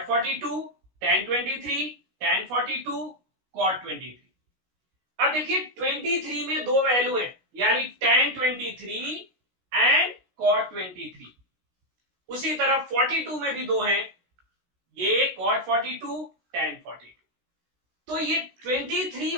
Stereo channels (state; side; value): late; left; 16 ms